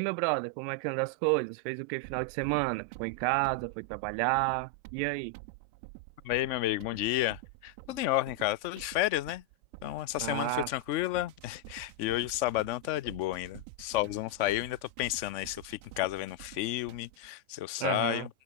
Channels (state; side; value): late; left; 3.5 ms